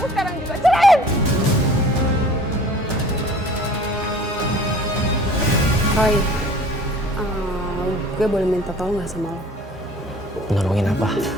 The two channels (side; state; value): both; normal; correlation 0.47